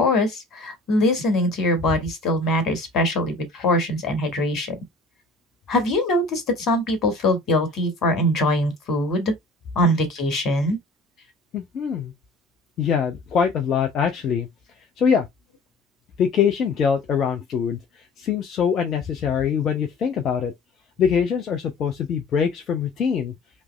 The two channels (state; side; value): quieter; right; 3.1 dB